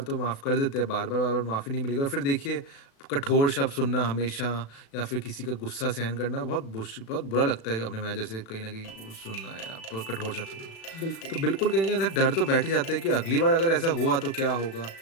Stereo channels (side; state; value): right; late; 36 ms